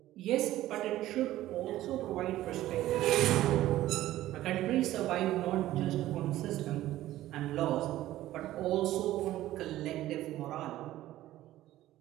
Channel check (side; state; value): left; quieter; 14.7 dB